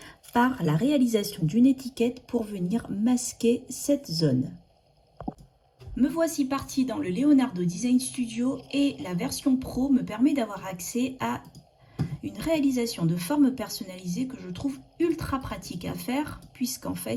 par la réalisation d'une étiquette pour venir masquer cette zone. Me voici partie dans le Leonardo Design Studio et la version Pro me permet d'avoir accès à une réalisation de forme personnalisée que je trouve ultra pratique à faire puisqu'en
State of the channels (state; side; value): identical; both; correlation 1.00